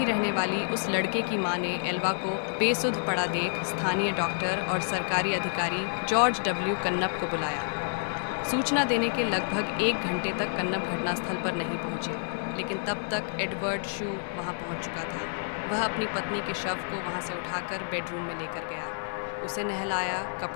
रहने वाली उस लड़के की मां ने एल्वा को बेसुध पड़ा देख स्थानीय डॉक्टर और सरकारी अधिकारी जॉर्ज डब्ल्यू कन्नप को बुलाया। सूचना देने के लगभग 1 घंटे तक कन्नप घटनास्थल पर नहीं पहुंचे, लेकिन तब तक एडवर्ड शू वहां पहुंच चुका था। वह अपनी पत्नी के शव को वहां से उठाकर बेडरूम में लेकर गया। उसे नहलाया,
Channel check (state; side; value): silent; right; digital silence